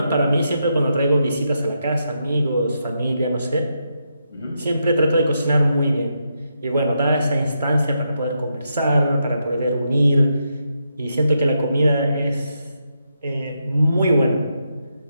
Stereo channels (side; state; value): both; inverted; correlation -0.82